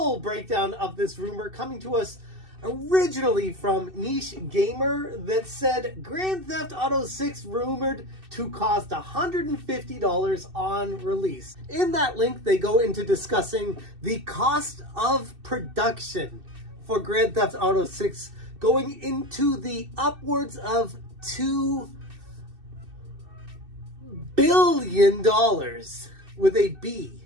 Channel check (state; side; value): late; left; 2.6 ms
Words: breakdown of this rumor coming to us originally from Niche Gamer that said Grand Theft Auto 6 rumored to cost $150 on release. In that link, they go into discussing the cost of production for Grand Theft Auto 6 going into the upwards of $2 billion with a B.